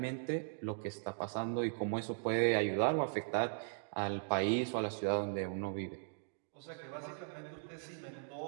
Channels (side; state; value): left; silent; digital silence